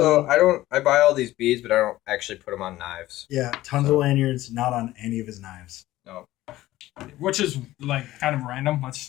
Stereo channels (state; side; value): quieter; right; 16.1 dB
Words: I buy all these beads, but I don't actually put them on knives. Yeah, tons of lanyards, not on any of his knives. No. Which is like kind of random.